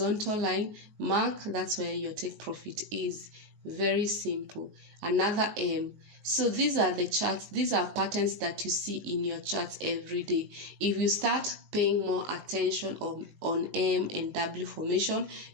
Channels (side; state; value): left; late; 19 ms